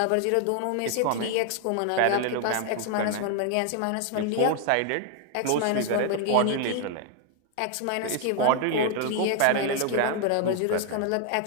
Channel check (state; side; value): different; both; correlation 0.00